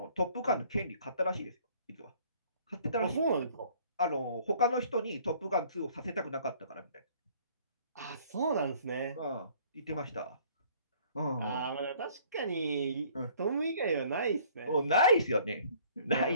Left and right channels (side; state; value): both; inverted; correlation -0.56